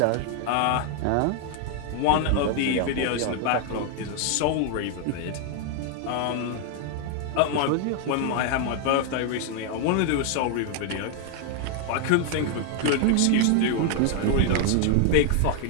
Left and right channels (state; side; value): different; both; correlation 0.00